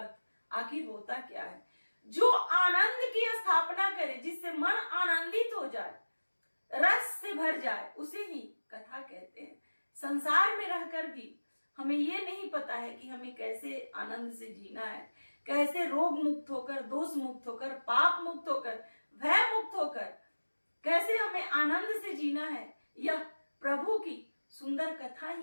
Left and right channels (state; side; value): inverted; both; correlation -1.00